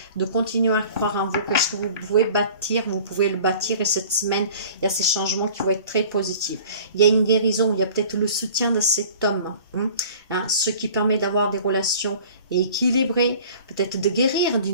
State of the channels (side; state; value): both; inverted; correlation -0.46